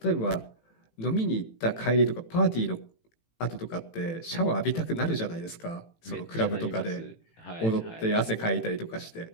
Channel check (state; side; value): late; right; 18 ms